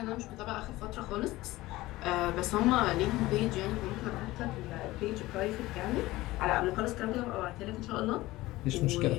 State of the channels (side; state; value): right; quieter; 18.3 dB